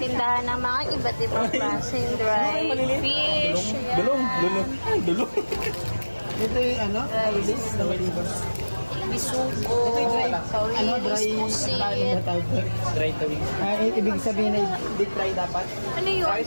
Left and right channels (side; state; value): both; inverted; correlation -1.00